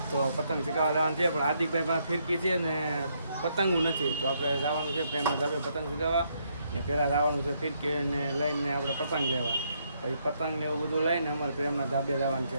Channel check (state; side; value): inverted; both; correlation -0.74